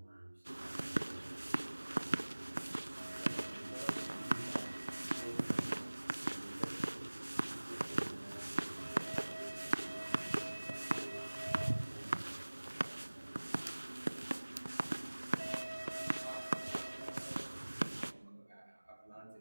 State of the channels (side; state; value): both; inverted; correlation -1.00